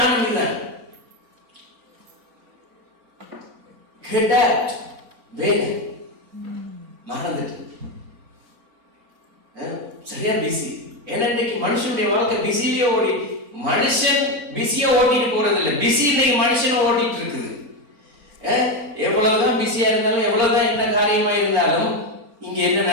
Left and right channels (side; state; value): left; late; 4.3 ms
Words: இதுதான். வேலை மறந்துட்டு சரியா பிஸி. ஏன்னா இன்னைக்கு மனுஷனுடைய வாழ்க்கை பிஸிலேயே ஓடி, மனுஷன் பிஸியா ஓட்டிட்டு போறது இல்லை, பிஸி இன்னைக்கு மனுஷன் ஓட்டிட்டு இருக்குது. எவ்வளவுதான் பிஸியா இருந்தாலும், எவ்வளவுதான் என்ன காரியமா இருந்தாலும், இங்க என்ன